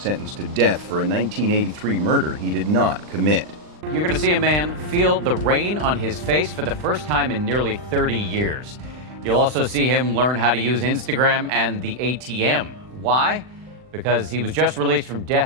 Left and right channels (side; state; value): left; late; 39 ms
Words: to death for a 1983 murder he did not commit. You're going to see a man feel the rain on his face for the first time in nearly 30 years. You'll also see him learn how to use Instagram and the ATM. Why? Because he was just released from